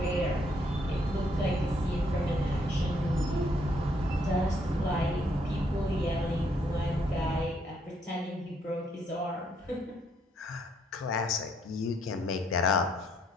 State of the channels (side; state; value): both; normal; correlation 0.70